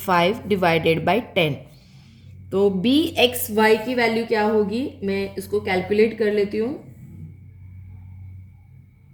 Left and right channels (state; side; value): identical; both; correlation 1.00